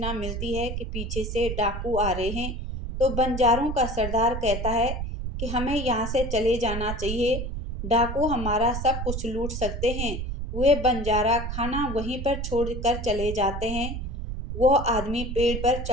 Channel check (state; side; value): noise; right; rumble, 5 dB below the sound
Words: मिलती है कि पीछे से डाकू आ रहे हैं। तो बंजारों का सरदार कहता है कि हमें यहाँ से चले जाना चाहिए, डाकू हमारा सब कुछ लूट सकते हैं। वे बंजारा खाना वहीं पर छोड़कर चले जाते हैं। वह आदमी पेड़ पर